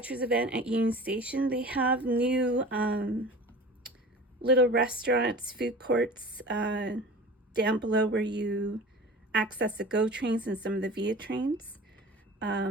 event at Union Station. They have new little restaurants, food courts down below where you access the GO trains and some of the VIA trains.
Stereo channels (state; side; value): normal; both; correlation 0.38